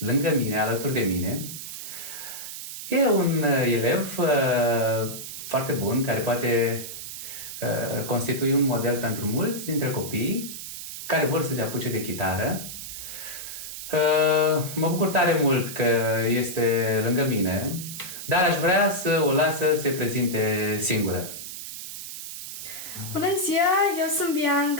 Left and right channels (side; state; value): right; noise; hiss, 9 dB below the sound